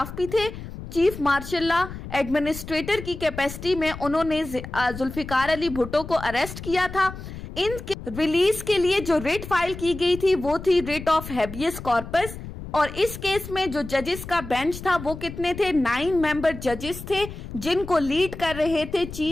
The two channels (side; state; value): left; noise; rumble, 11 dB below the sound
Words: भी थे, चीफ मार्शल लॉ एडमिनिस्ट्रेटर की कैपेसिटी में उन्होंने जुल्फिकार अली भुट्टो को अरेस्ट किया था। इनके रिलीज के लिए जो रिट फाइल की गई थी वो थी रिट ऑफ हैबियस कॉर्पस और इस केस में जो जजेस का बेंच था वो कितने थे, 9 मेंबर जजेस थे जिनको लीड कर रहे थे